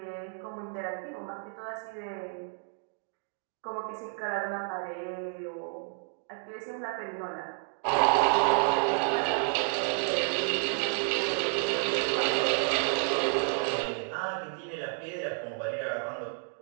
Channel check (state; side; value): silent; left; 57 dB below the other